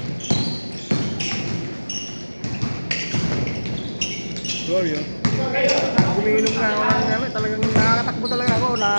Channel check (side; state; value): both; inverted; correlation -1.00